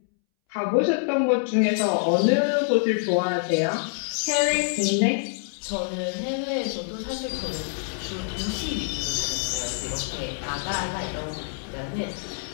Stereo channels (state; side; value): silent; right; 61 dB below the other